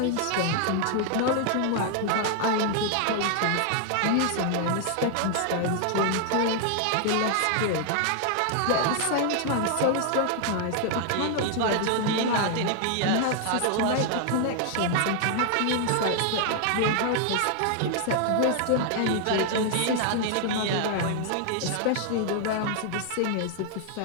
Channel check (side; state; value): both; different; correlation 0.00